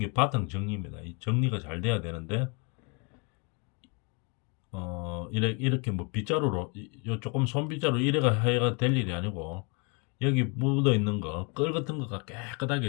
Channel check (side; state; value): right; quieter; 32.3 dB